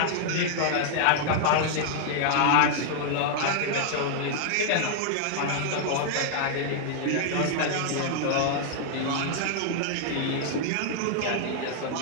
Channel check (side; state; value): both; different; correlation -0.01